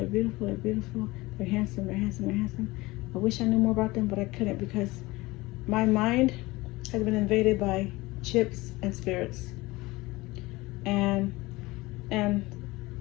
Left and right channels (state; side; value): quieter; right; 21.0 dB